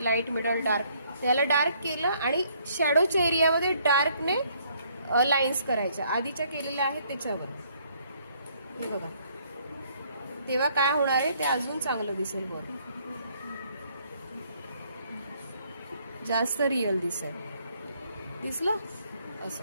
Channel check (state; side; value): inverted; both; correlation -0.66